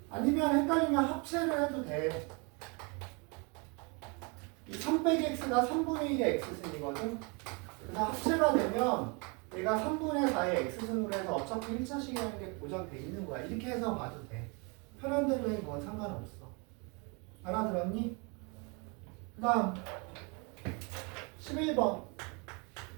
아니면 헷갈리면 합체를 해도 돼. 이 3 빼기 x가 3분의 1의 x승이거든. 그래서 합체가 되면 얘가 3분의 4의 x승으로 해서 어차피 1차식이라는 게 보장돼 있는 거야. 이렇게 해서 봐도 돼. 편한 대로 해. 그건 상관없어. 알아들었니? 그 다음 11번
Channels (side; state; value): left; quieter; 31.7 dB